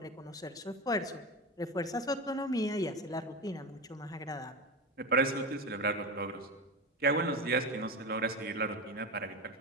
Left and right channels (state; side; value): normal; both; correlation 0.21